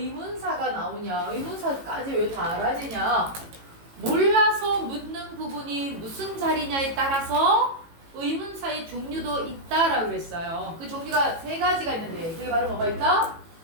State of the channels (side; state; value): left; late; 18 ms